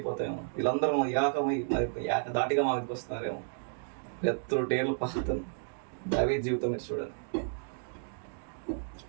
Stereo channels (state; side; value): silent; left; digital silence